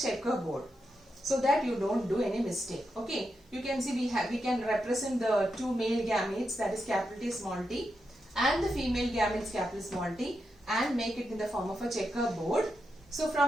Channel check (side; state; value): both; normal; correlation 0.86